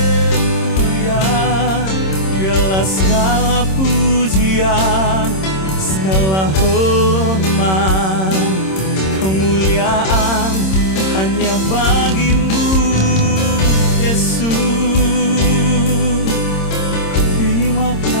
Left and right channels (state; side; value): late; right; 26 ms